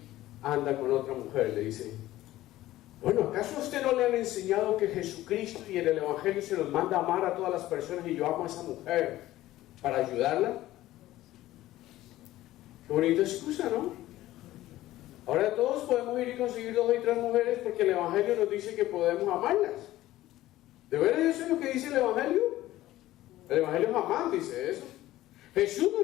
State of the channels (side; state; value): right; quieter; 15.5 dB